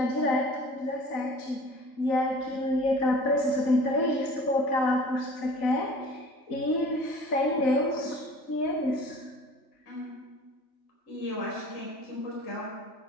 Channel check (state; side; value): late; right; 3.4 ms